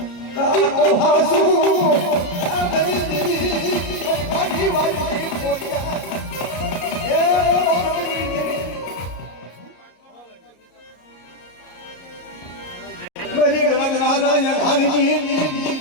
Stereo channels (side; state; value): right; late; 33 ms